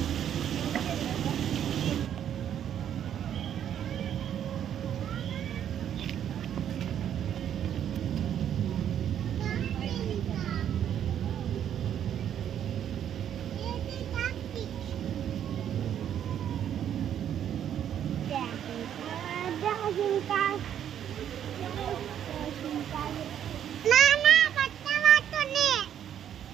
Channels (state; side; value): quieter; left; 9.8 dB